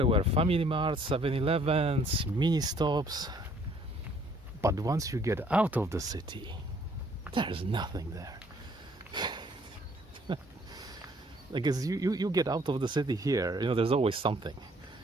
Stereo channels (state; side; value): normal; both; correlation 0.61